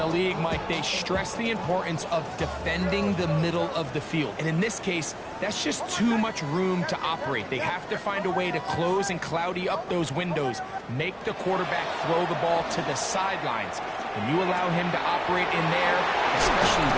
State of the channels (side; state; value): both; identical; correlation 1.00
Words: league, Mike, they stress the importance of defending the middle of the field. And in this case, that's just too much room to operate. They have to find a way to close and cloudy up those windows, make the quarterback throw the ball to the sidelines. When you allow him to operate in there, especially